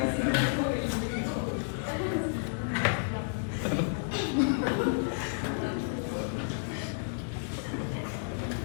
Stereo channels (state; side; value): silent; right; 57 dB below the other